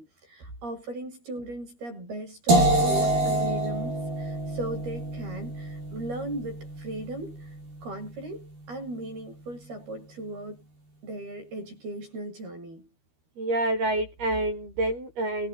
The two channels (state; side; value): late; left; 13 ms